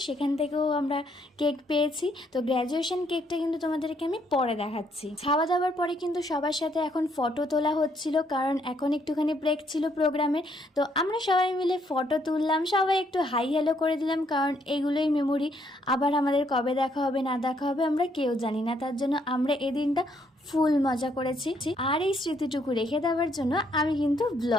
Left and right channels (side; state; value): both; normal; correlation 0.71